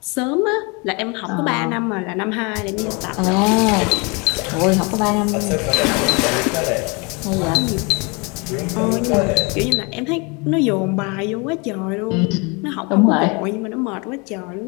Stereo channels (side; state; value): right; quieter; 30.1 dB